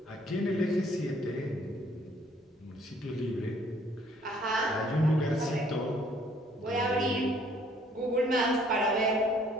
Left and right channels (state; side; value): normal; both; correlation 0.62